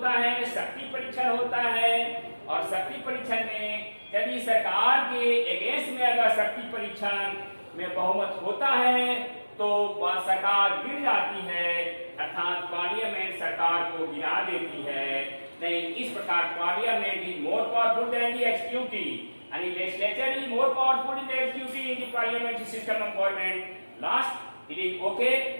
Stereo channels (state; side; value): inverted; both; correlation -1.00